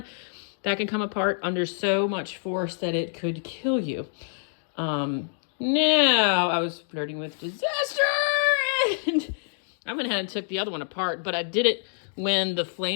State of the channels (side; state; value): right; silent; digital silence